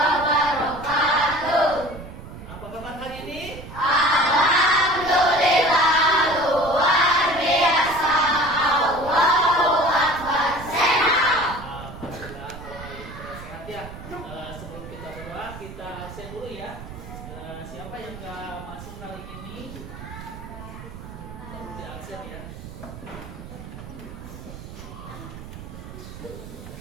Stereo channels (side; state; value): right; noise; rumble, 13 dB below the sound